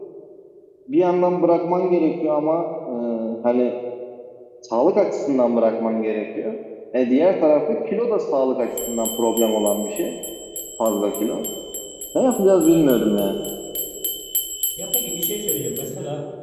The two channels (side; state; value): both; identical; correlation 1.00